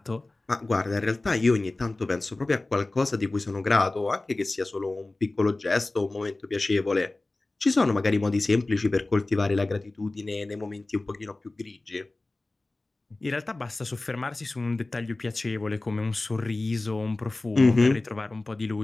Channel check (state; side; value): quieter; right; 3.0 dB